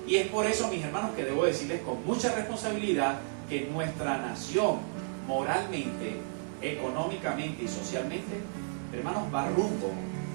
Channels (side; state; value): left; silent; digital silence